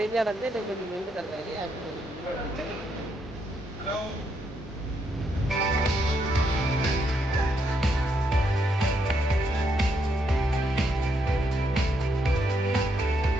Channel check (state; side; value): normal; both; correlation 0.77